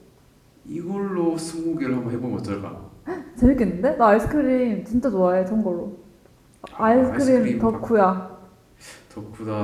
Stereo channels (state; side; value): identical; both; correlation 1.00